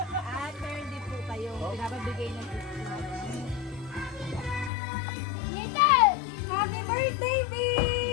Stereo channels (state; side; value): drops out; right; at 4.7 s